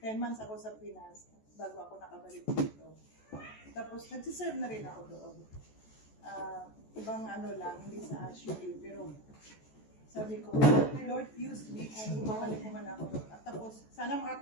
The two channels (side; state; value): right; late; 14 ms